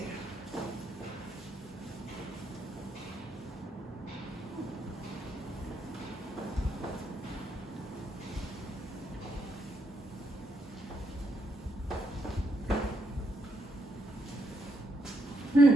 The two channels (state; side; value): normal; both; correlation 0.77